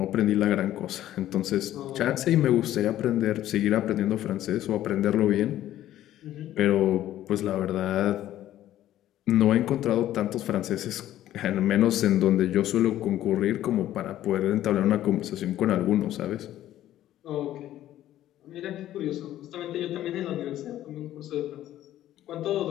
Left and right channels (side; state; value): right; quieter; 13.0 dB